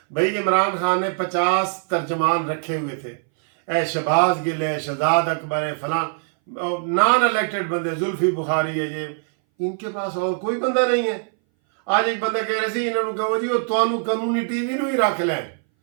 भाई इमरान खान ने 50 तर्जमान रखे हुए थे, ए शहबाज गिल है, शहजाद अकबर है, फलान नॉन इलेक्टेड बंदे, जुल्फी बुखारी है, ये इनके पास और कोई बंदा नहीं है। आज एक बंदा कह रहे थे इन्होंने कहो जी वो तुहानू कानूनी टीवी नू ही रख लैन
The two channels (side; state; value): left; silent; 61 dB below the other